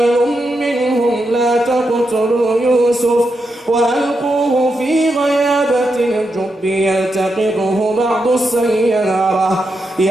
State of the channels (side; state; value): both; normal; correlation 0.85